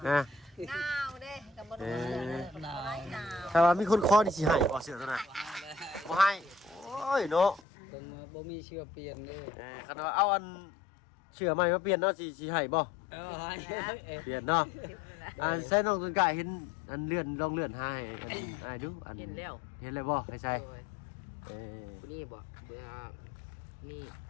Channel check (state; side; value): drops out; right; at 7.6 s